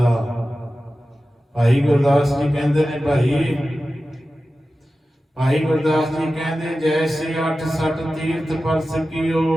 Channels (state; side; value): normal; both; correlation 0.94